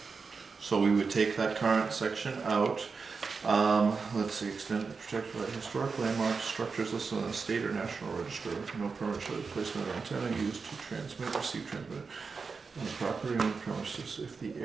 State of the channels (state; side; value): quieter; left; 4.9 dB